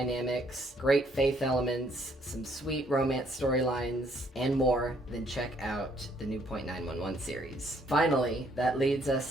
great faith elements, some sweet romance storylines, and more, then check out the new .911 series. Finally, that leads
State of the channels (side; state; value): both; normal; correlation 0.67